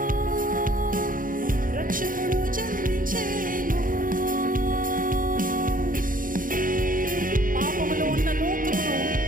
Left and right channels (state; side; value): late; left; 0.40 ms